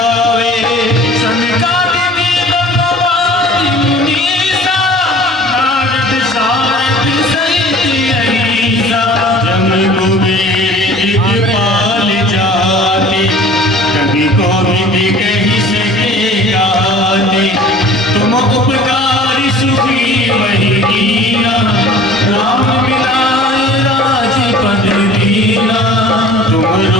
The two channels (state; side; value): normal; both; correlation 0.47